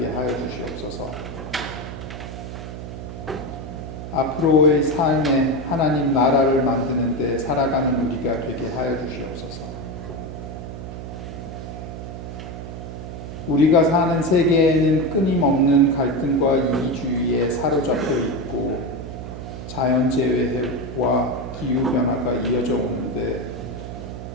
하여 주시옵소서. 앞으로의 삶에 하나님 나라를 만드는 데 살아가는 우리가 되게 하여 주시옵소서. 우리가 사는 세계에는 끊임없는 갈등과 이기주의에 사로잡혀 있고 자연재해와 기후변화가 이어져 오는데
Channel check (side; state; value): right; noise; hum, 9 dB below the sound